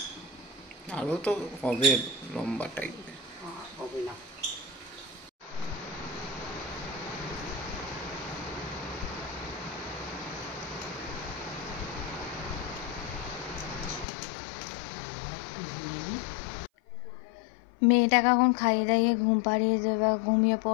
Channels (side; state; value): right; drops out; at 14.1 s